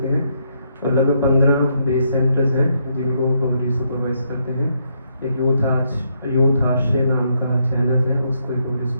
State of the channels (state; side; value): inverted; both; correlation -0.76